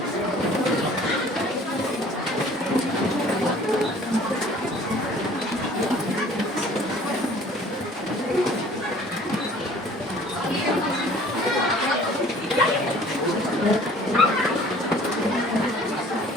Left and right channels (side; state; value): both; normal; correlation 0.51